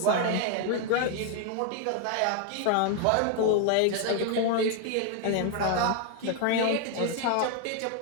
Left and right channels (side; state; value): both; different; correlation 0.00